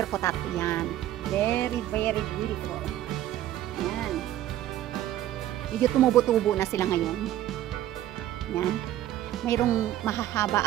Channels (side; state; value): left; quieter; 13.0 dB